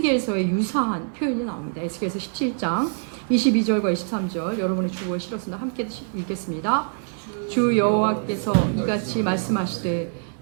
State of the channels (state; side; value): silent; left; digital silence